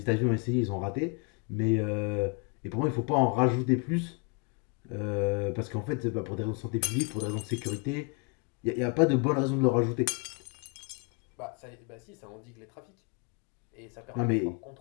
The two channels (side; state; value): right; quieter; 35.8 dB